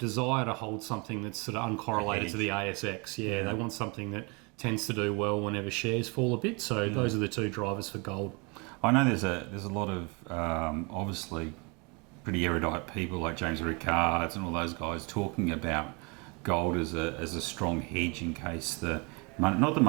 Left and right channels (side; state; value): left; quieter; 30.4 dB